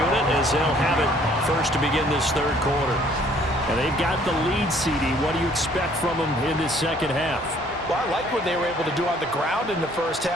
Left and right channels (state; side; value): normal; both; correlation 0.60